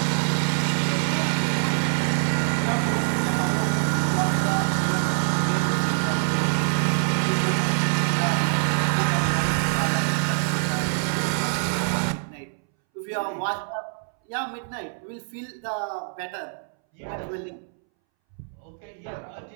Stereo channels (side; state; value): left; silent; 62 dB below the other